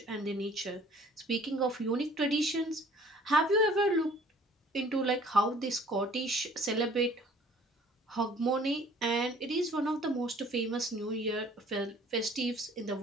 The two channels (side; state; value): both; normal; correlation 0.53